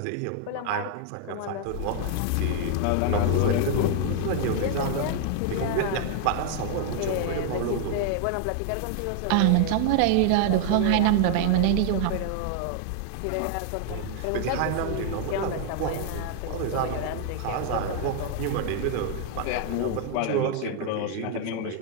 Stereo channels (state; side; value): different; both; correlation 0.00